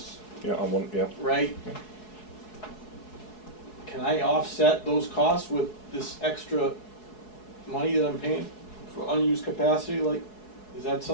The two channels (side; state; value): right; late; 4.7 ms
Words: Yeah, on one, yeah. right? Can I offset those costs with this extra money that I'm paying for unused capacity? Like, is that